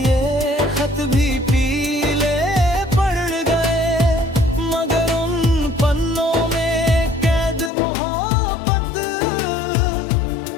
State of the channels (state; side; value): drops out; right; at 7.7 s